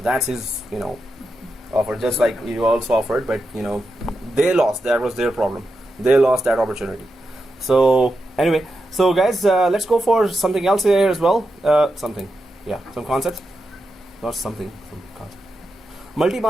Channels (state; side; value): normal; both; correlation 0.88